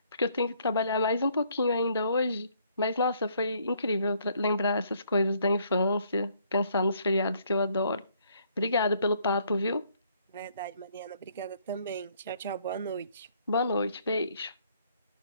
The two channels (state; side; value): inverted; both; correlation -0.66